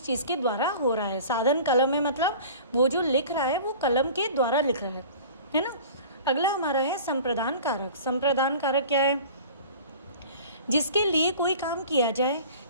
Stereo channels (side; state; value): both; inverted; correlation -0.43